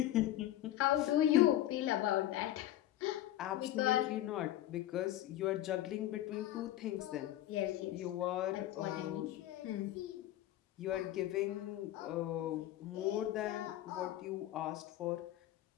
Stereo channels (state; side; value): quieter; right; 13.6 dB